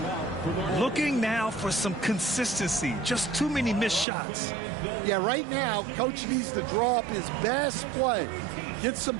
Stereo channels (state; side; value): drops out; left; at 4.0 s